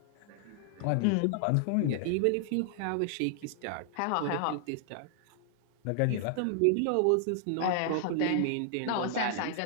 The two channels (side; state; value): both; different; correlation 0.00